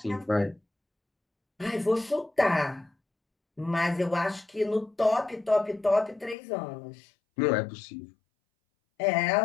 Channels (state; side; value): drops out; right; at 6.4 s